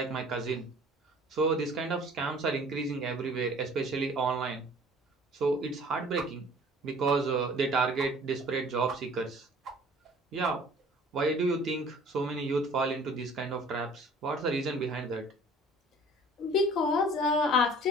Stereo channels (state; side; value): normal; both; correlation 0.49